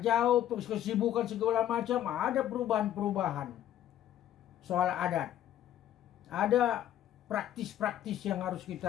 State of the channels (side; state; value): right; quieter; 11.7 dB